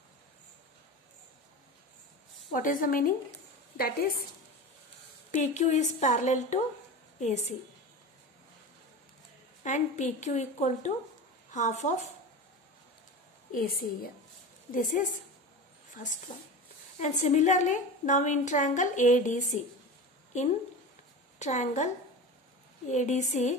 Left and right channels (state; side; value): normal; both; correlation 0.29